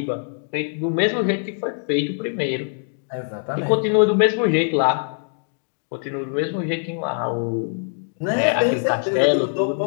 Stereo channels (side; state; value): right; silent; digital silence